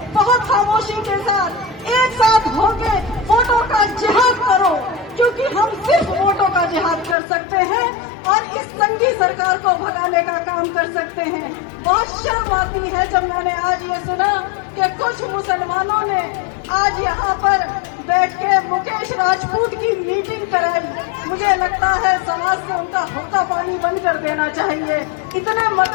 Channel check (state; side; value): drops out; right; at 7.2 s